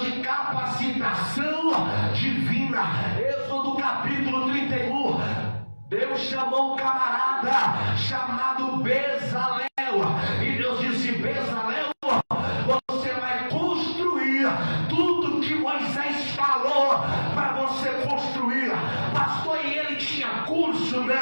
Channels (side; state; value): both; inverted; correlation -1.00